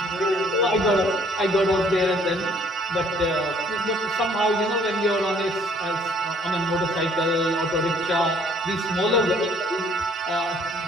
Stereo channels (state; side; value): normal; both; correlation 0.61